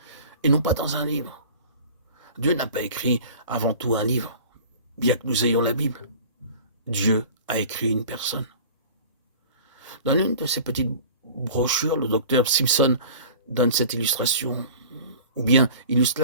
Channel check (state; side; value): inverted; both; correlation -0.42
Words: et non pas dans un livre. Dieu n'a pas écrit avant tout un livre, bien que nous ayons la Bible. Dieu a écrit une personne. Dans l'une de ces petites brochures, le docteur Simpson donne cette illustration, ou bien illustre